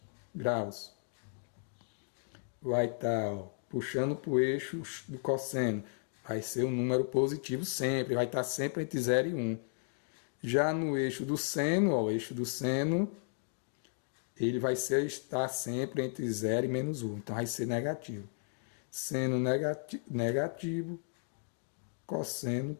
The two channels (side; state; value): right; silent; digital silence